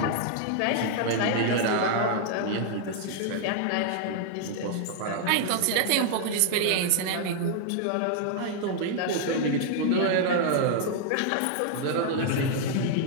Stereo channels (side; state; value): both; different; correlation 0.00